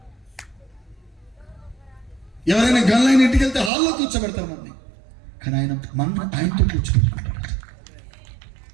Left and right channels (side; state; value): left; drops out; at 3.7 s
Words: ఎవరైనా గన్లైన ఇంటికి వెళ్తే హాల్లో కూర్చోబెడతారు మనల్ని, కానీ ఆయనతో కూర్చోబెట్టుకుంటాడు.